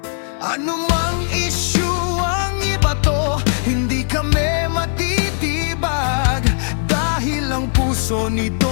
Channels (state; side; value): silent; right; 61 dB below the other